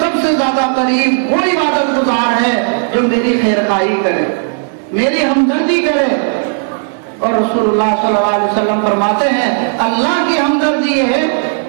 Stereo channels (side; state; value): left; silent; digital silence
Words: سے زیادہ قریب وہ عبادت گزار ہے جو میری خیر خواہی کرے، میری ہمدردی کرے۔ اور رسول اللہ صلی اللہ علیہ وسلم فرماتے ہیں اللہ کی ہمدردی یہ ہے،